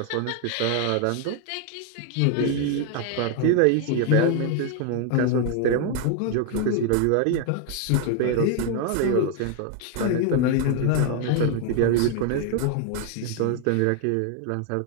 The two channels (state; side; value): different; both; correlation 0.00